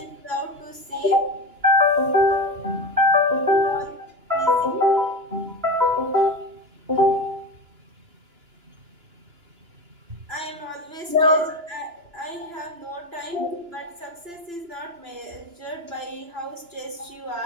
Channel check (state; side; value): late; left; 2.9 ms